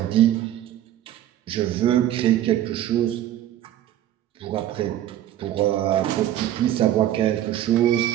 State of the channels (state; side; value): quieter; left; 12.4 dB